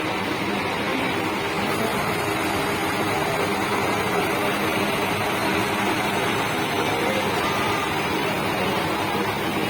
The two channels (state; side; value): identical; both; correlation 1.00